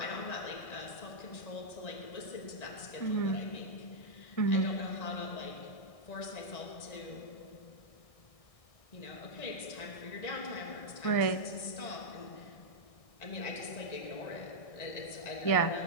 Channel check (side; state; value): right; late; 1.6 ms